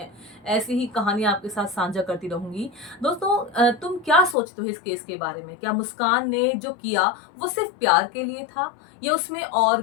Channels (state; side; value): drops out; right; at 4.4 s